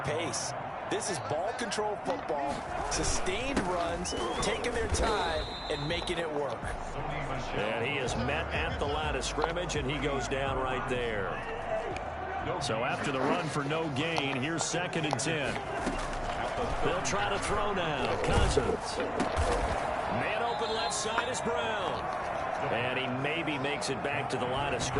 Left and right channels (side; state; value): both; identical; correlation 1.00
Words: pace. This is ball control football, sustained runs, taking their time, and making it work. And he is met at the line of scrimmage, and he goes down right there. So after the run for no gain, here's 2nd and 10. They'll try to throw now. Cousins. Man open left side is Brown. And he maybe makes it back to the line of